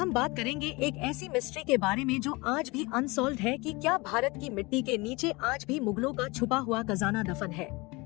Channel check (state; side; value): quieter; right; 24.6 dB